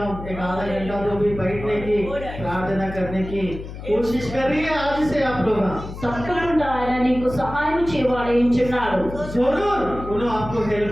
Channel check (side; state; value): left; noise; hum, 11 dB below the sound